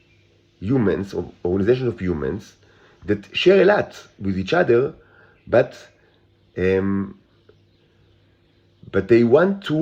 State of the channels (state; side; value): identical; both; correlation 1.00